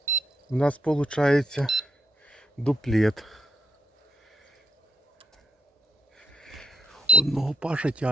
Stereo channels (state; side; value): normal; both; correlation 0.73